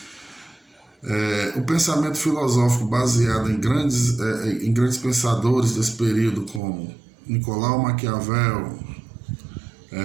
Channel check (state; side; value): drops out; left; at 6.6 s